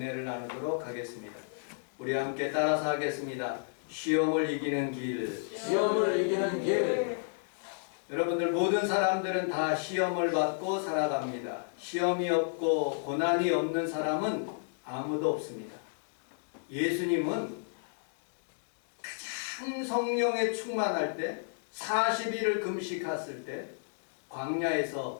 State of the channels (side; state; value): right; silent; digital silence